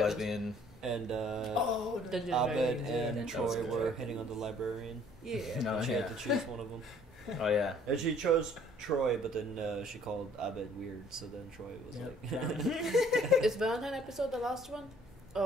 lesbian. And Dungeons Abed Dragons, and Troy were hitting on the librarian. Yeah. No, She yeah. had to choose one of them. Oh yeah. And she chose Troy, but then she called Abed weird, so then Troy was like... Is Valentine episode the last one?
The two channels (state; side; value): normal; both; correlation 0.58